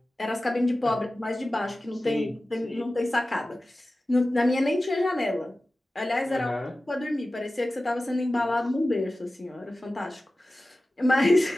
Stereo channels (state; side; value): normal; both; correlation 0.95